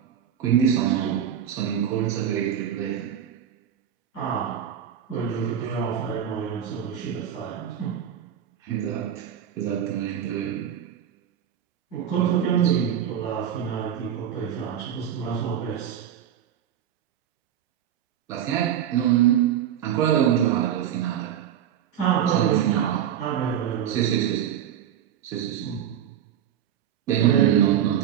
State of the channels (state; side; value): quieter; left; 9.7 dB